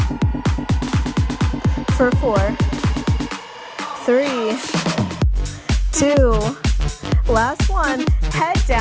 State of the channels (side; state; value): both; identical; correlation 1.00